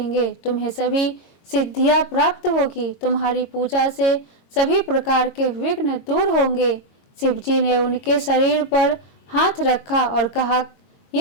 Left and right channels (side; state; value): right; late; 22 ms